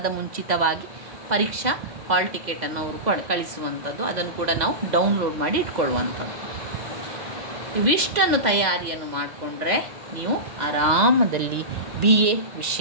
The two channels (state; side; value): late; left; 2.0 ms